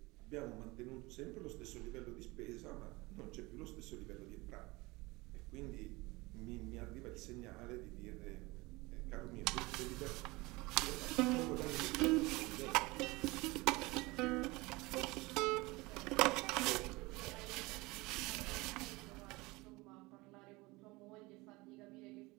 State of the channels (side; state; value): left; quieter; 22.8 dB